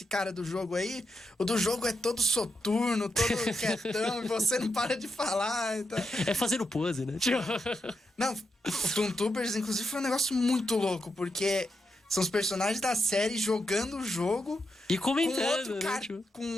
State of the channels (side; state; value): both; normal; correlation 0.85